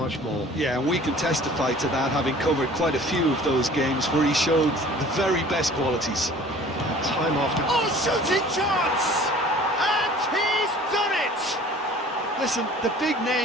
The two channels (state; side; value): normal; both; correlation 0.48